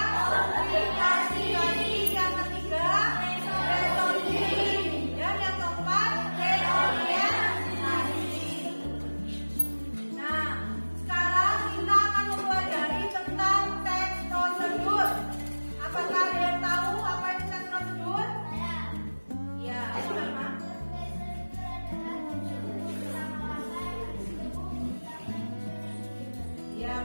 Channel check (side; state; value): both; inverted; correlation -1.00